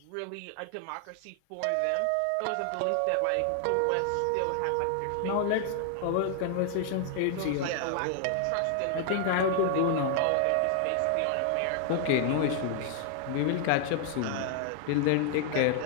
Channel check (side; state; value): both; different; correlation 0.00